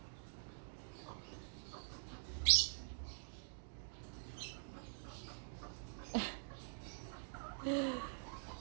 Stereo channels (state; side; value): silent; left; digital silence